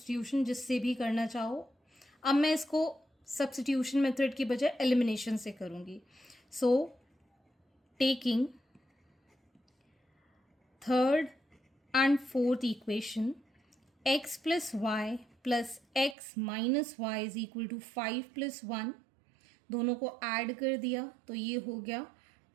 जिससे भी करना चाहो। अब मैं इसको सब्स्टिट्यूशन मेथड की बजाय एलिमिनेशन से करूँगी। So taking third and fourth equation, x plus y plus x minus y is equal to 5 plus 1, दोनों को ऐड कर दिया तो ये हो गया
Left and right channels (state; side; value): drops out; left; at 16.2 s